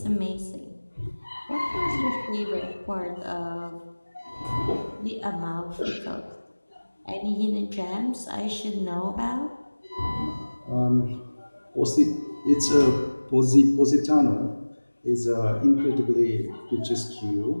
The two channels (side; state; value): both; inverted; correlation -1.00